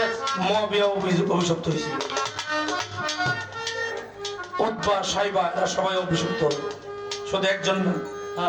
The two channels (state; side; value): identical; both; correlation 1.00